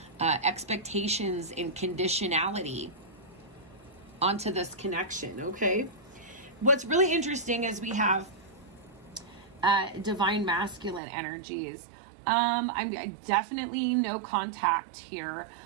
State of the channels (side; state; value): left; drops out; at 11.0 s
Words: expectations and conditionality onto this connection. Okay. What's really interesting is we have divine masculine energies. I'm definitely no contact here.